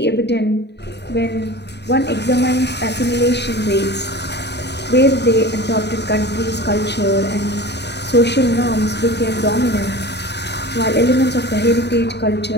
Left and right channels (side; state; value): right; late; 0.49 ms